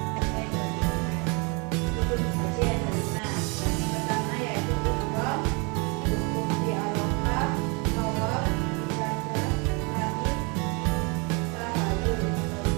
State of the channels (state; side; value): quieter; left; 31.1 dB